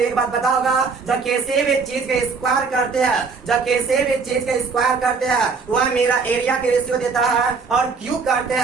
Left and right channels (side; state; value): left; quieter; 4.9 dB